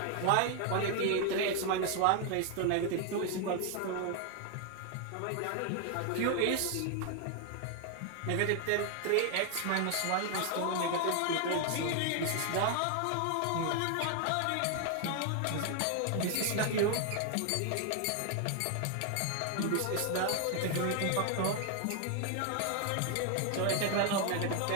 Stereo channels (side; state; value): both; different; correlation 0.00